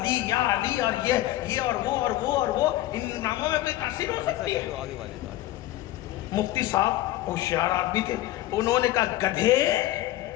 یا علی اور یہ اور وہ اور وہ اور وہ، ان ناموں میں کوئی تاثیر ہو سکتی ہے؟ مفتی صاحب ہوشیار آدمی تھے، انہوں نے کہا گدھے،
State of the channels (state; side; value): quieter; right; 15.6 dB